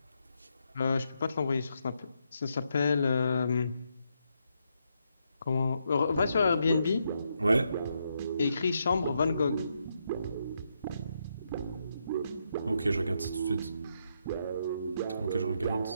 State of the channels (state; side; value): inverted; both; correlation -0.79